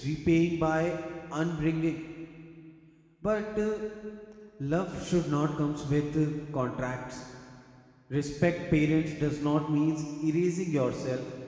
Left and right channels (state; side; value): identical; both; correlation 1.00